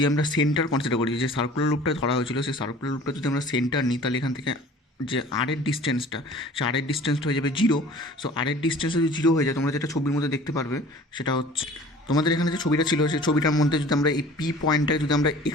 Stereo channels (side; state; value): both; normal; correlation 0.46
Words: আমরা সেন্টার কনসিডার করি, যে সার্কুলার লুপটা ধরা হয়েছিল সেই সার্কুলার লুপটা যদি আমরা সেন্টার নিই তাহলে এখান থেকে যে আরের ডিস্টেন্সটা, সে আরের ডিস্টেন্সটা হয়ে যাবে 0। সো আরের ডিস্টেন্স যদি 0 হয়ে যায়, তোমরা যেটা ছবির মধ্যে দেখতে পারবে সেটা হচ্ছে তোমাদের এখানে যে ছবিটা ছিল সেই ছবিটার মধ্যে যদি আমরা এই পি পয়েন্টটাকে যদি আমরা